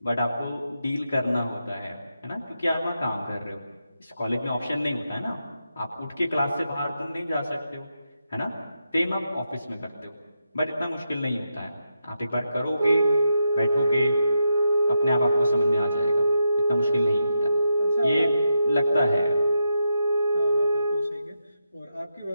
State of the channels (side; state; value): both; inverted; correlation -0.85